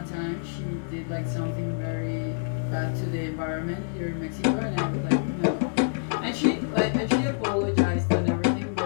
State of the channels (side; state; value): right; silent; digital silence